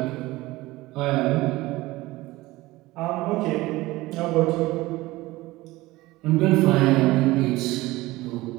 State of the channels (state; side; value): quieter; left; 19.2 dB